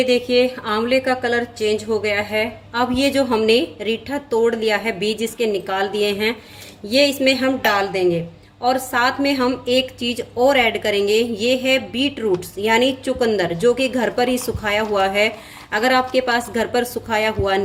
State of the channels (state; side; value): identical; both; correlation 1.00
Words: देखिए आंवले का कलर चेंज हो गया है। अब ये जो हमने रीठा तोड़ लिया है, बीज इसके निकाल दिए हैं, ये इसमें हम डाल देंगे। और साथ में हम एक चीज़ और ऐड करेंगे, ये है बीट रूट्स यानी चुकंदर, जो कि घर पर ही सुखाया हुआ है। अगर आपके पास घर पर सुखाया हुआ